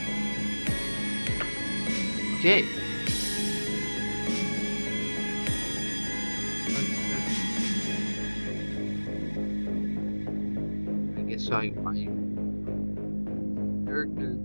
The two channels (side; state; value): both; inverted; correlation -1.00